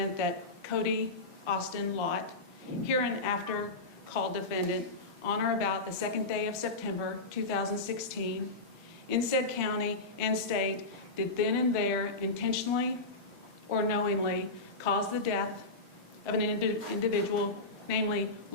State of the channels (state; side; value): quieter; right; 3.1 dB